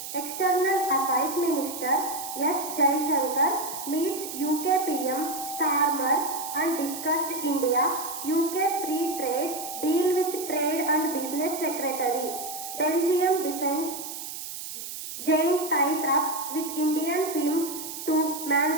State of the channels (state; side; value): noise; right; hiss, 8 dB below the sound